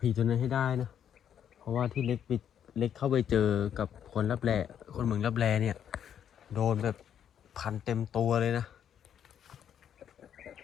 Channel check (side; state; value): right; quieter; 9.1 dB